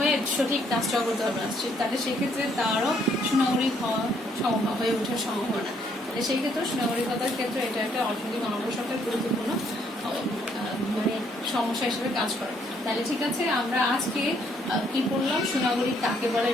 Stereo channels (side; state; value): both; normal; correlation 0.68